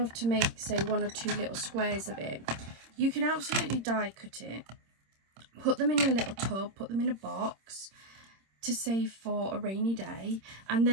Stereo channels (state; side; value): late; left; 26 ms